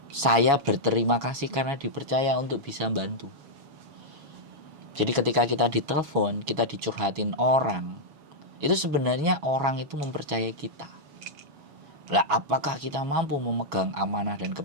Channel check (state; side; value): late; left; 7.2 ms